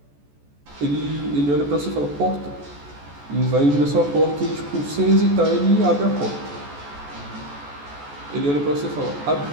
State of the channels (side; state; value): left; late; 14 ms